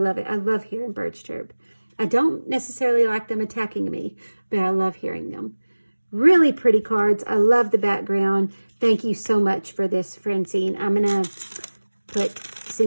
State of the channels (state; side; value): inverted; both; correlation -1.00